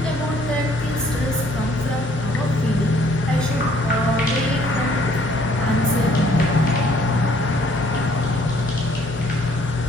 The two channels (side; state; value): left; noise; hum, 15 dB below the sound